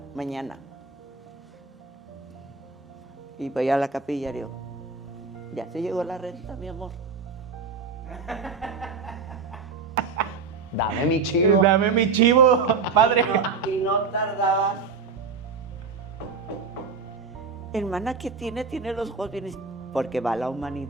mañana. Y voy a la capilla y digo, ya se llegó la renta, mi amor. Dame mi chivo. Dame mi chivo, padre. Y no tardaba. Hermana, ¿qué tiene? Tiene los ojos bien, porque va la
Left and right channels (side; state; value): left; quieter; 4.9 dB